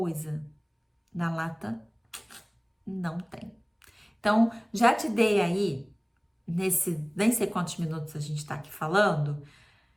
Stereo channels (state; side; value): identical; both; correlation 1.00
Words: Na lata, não tem. Então, já te dei aí, nem sei quantos minutos a gente tá aqui falando,